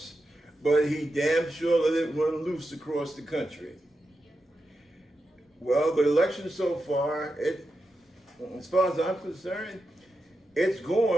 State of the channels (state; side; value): normal; both; correlation 0.88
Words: but he damn sure let it run loose across the country. Well, the election so far, as far as I'm concerned, it's